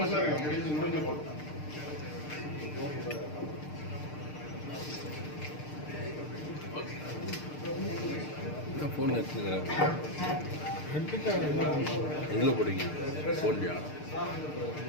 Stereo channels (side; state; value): right; late; 6.6 ms